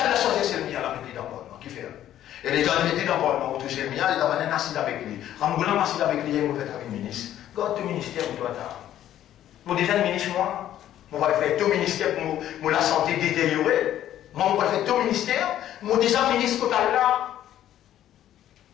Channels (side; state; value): right; quieter; 11.9 dB